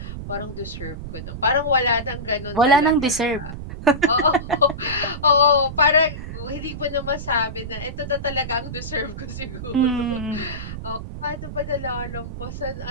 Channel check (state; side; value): noise; right; rumble, 8 dB below the sound